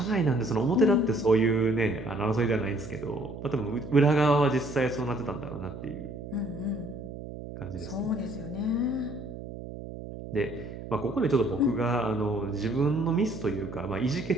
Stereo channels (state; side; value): noise; right; hum, 11 dB below the sound